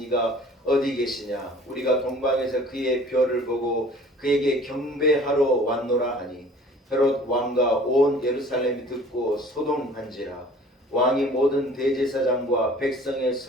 이가 어디 계시냐? 우리가 동방에서 그의 별을 보고 그에게 경배하러 왔노라 하니 헤롯 왕과 온 예루살렘이 듣고 소동한지라. 왕이 모든 대제사장과 백성의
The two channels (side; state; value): both; normal; correlation 0.49